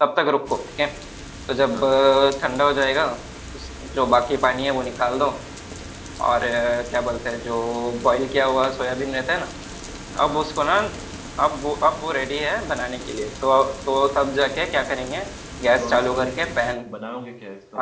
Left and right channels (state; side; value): identical; both; correlation 1.00